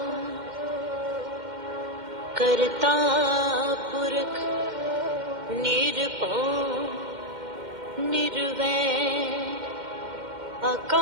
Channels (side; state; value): left; late; 2.1 ms